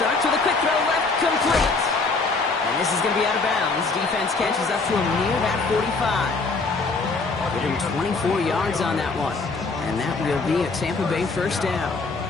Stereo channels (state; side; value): quieter; right; 3.9 dB